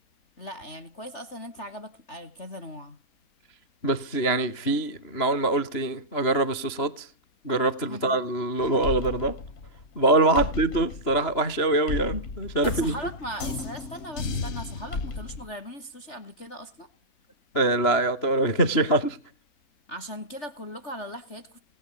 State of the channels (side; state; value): right; late; 3.0 ms